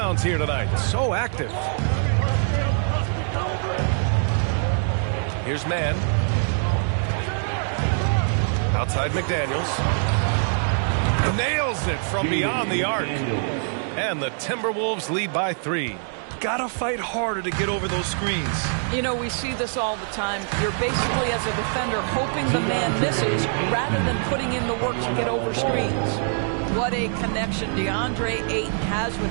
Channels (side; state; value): left; silent; 60 dB below the other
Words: here tonight. So active. Here's Mann. Outside McDaniels. Nails it from beyond the arc. And the Timberwolves lead by 3. Gotta fight harder to get over those screens. You know, we see this all the time. You're basically, as a defender, hoping the man misses rather than putting in the work to get over screens. What a connection DeAndre Ayton has